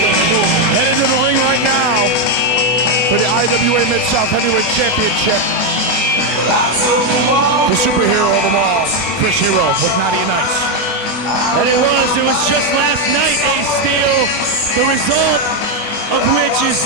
on the move. Headed to the ring right now for the IWA Mid-South Heavyweight Championship. The superhero of them all, Chris Hero with Naughty and Nice. And it was just last night, Ace Steel, the result of which is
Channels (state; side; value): late; right; 25 ms